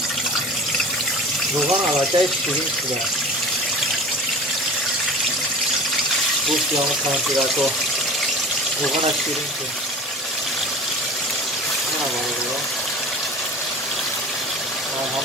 روغان علاقه شیرین شده. گوشتی همون کانتی رکو روغان شیرین شده. این همه روغان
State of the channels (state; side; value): normal; both; correlation 0.38